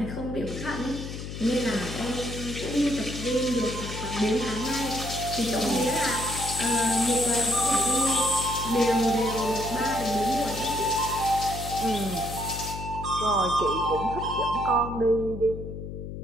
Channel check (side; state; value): left; noise; hum, 8 dB below the sound